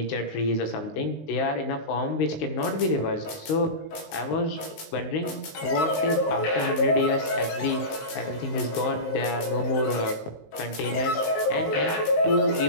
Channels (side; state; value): right; late; 19 ms